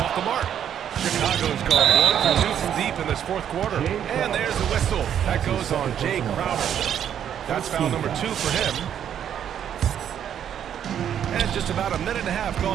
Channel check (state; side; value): quieter; left; 9.4 dB